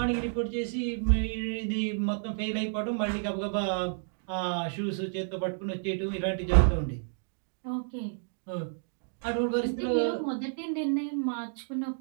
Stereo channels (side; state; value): left; silent; digital silence